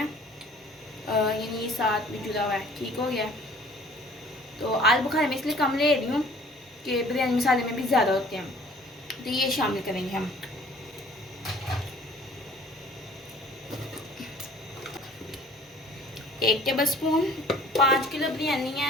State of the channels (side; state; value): both; normal; correlation 0.52